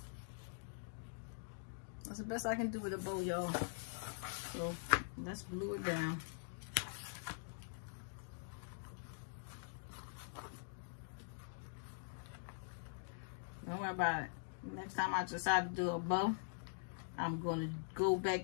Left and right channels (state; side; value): silent; right; digital silence